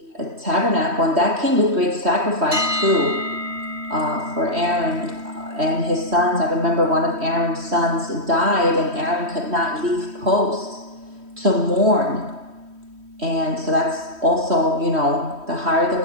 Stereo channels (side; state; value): left; late; 3.1 ms